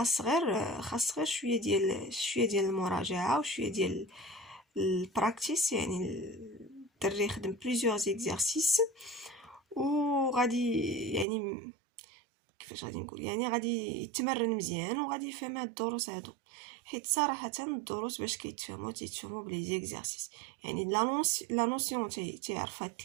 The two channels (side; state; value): left; drops out; at 11.2 s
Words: غير شويه ديال المراجعه وشويه ديال البراكتيس، يعني الدري يخدم بليزيور زيكزارسيس وغادي يعني كيفاش غادي نقول، يعني غادي يتمرن مزيان وغادي يفهم هاد الدروس هادو، حيت صراحه الدروس باش تيتفهموا بلي زيكزارسيس، يعني لا نوسيون تيعرفها